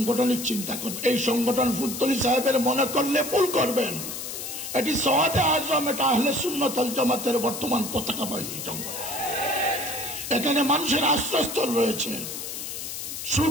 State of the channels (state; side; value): noise; left; hiss, 7 dB below the sound